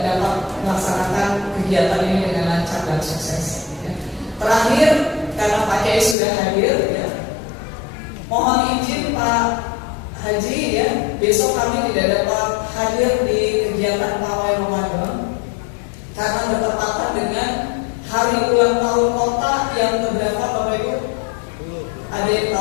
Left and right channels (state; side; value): drops out; right; at 6.2 s